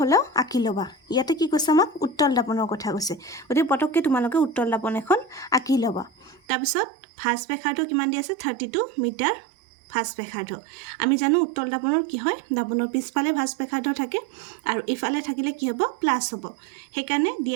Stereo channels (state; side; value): drops out; left; at 6.4 s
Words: হ'লেও আঁকি ল'বা। ইয়াতে কি কৈছে আমাক উত্তল দাপনৰ কথা কৈছে, গতিকে পটককৈ তোমালোকে উত্তল দাপন এখন আঁকি ল'বা। তাৰপিছত ভাঁজ ব্যাসাৰ্ধ কিমান দি আছে 32 মিটাৰ ভাঁজ ব্যাসাৰ্ধ। আমি জানো উত্তল দাপনৰ কি হয় দাপনৰ পিছফালে ভাঁজ ব্যাসাৰ্ধ থাকে, আৰু ইফালে থাকিলে কি হ'ব প্লাছ হ'ব। সেইকাৰণে